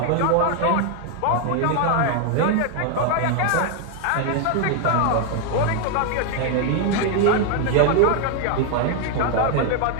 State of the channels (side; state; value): both; different; correlation 0.00